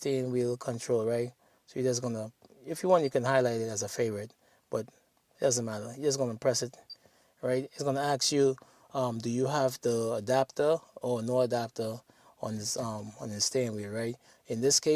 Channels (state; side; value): identical; both; correlation 1.00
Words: wheel control, right? So you're just going to, if you want, you can highlight it as a favorite, but it doesn't matter. You're just going to press it, right? It's going to ask you, do you have the adapter or no adapter on this steering wheel, right? In this